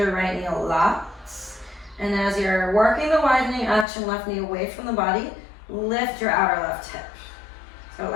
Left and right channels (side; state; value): right; drops out; at 3.9 s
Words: right knee a lot. And as you're working the widening action, left knee away from the body, lift your outer left hip. So it